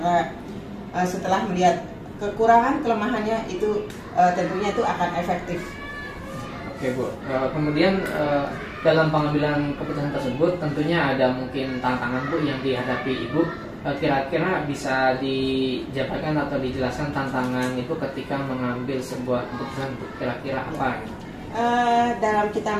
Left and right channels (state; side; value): identical; both; correlation 1.00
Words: setelah melihat kekurangan kelemahannya itu tentunya itu akan efektif. Oke Bu, kemudian dalam pengambilan keputusan tersebut tentunya ada mungkin tantangan Bu yang dihadapi Ibu. Kira-kira bisa dijabarkan atau dijelaskan tantangan itu ketika mengambil sebuah keputusan kira-kira apa? Dalam kita